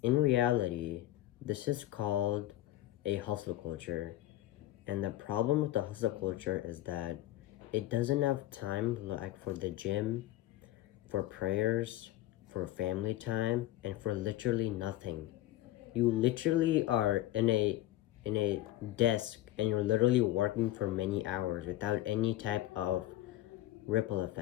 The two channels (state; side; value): quieter; right; 14.7 dB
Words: in reality, this is called a hustle culture. And the problem with the hustle culture is that it doesn't have time like for the gym, for prayers, for family time, and for literally nothing. You literally are in a desk and you're literally working for many hours without any type of ripple